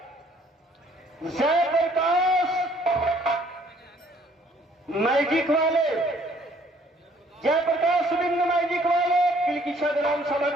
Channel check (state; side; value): normal; both; correlation 0.61